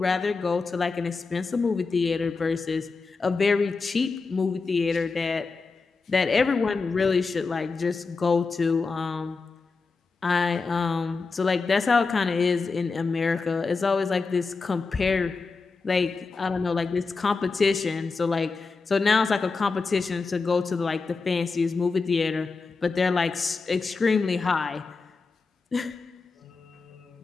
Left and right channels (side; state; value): right; quieter; 4.3 dB